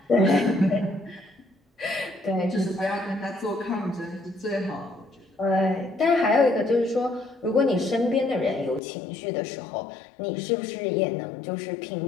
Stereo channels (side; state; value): right; drops out; at 8.8 s